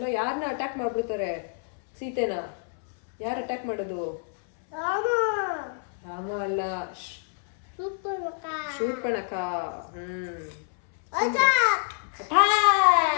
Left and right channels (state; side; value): silent; right; 60 dB below the other